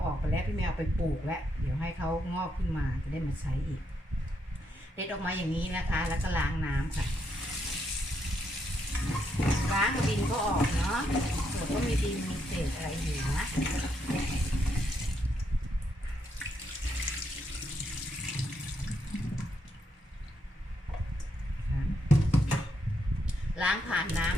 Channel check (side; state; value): both; normal; correlation 0.78